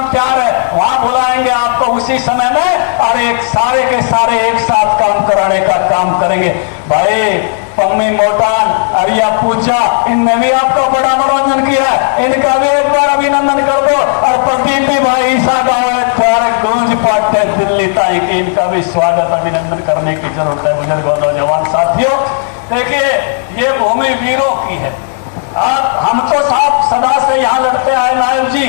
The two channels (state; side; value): silent; right; digital silence